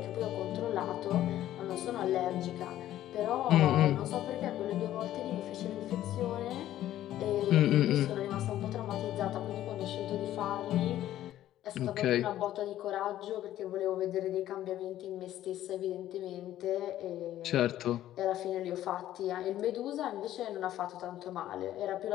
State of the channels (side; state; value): right; quieter; 13.0 dB